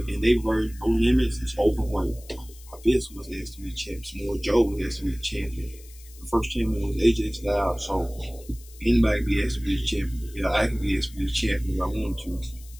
in their version, no limits. It's open weight. Abyss was the X-Division champion. Samoa Joe was the X-Division champion. The first champion was AJ Styles. So anybody can be X-Division champion. Yeah, I can be X-Division champion if I want to.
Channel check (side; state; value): left; noise; hiss, 22 dB below the sound